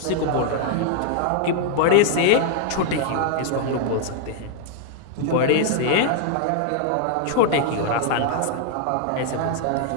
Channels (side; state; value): both; different; correlation -0.01